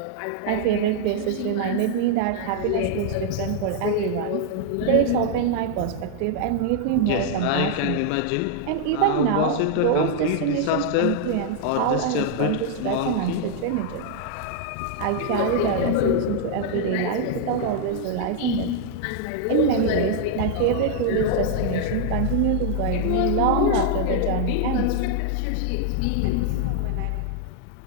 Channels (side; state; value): both; different; correlation 0.00